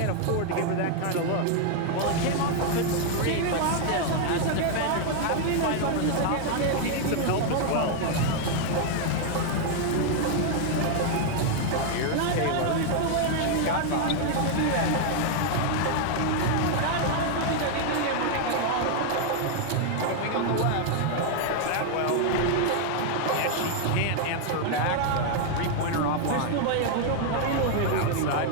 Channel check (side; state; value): both; different; correlation 0.00